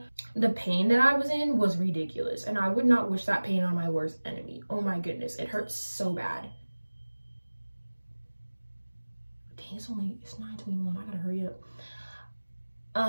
The pain that I was in was ridiculous. And I would not wish that pain on my worst enemy. Oh my goodness, it hurts so bad. Dang, it's 9:21, I gotta hurry up.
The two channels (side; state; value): both; inverted; correlation -1.00